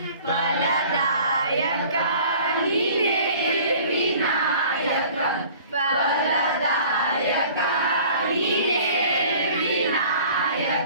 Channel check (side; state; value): both; inverted; correlation -0.48